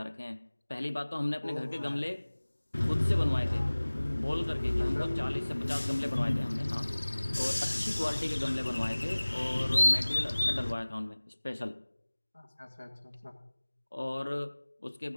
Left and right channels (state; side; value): inverted; both; correlation -1.00